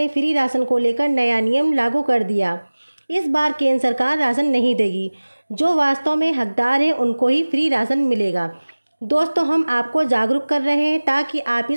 फ्री राशन को लेकर नया नियम लागू कर दिया। इस बार केंद्र सरकार राशन नहीं देगी, जो वास्तव में हकदार हैं उनको ही फ्री राशन मिलेगा। दोस्तों, हम आपको जागरूक कर रहे हैं ताकि आप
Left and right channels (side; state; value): both; inverted; correlation -1.00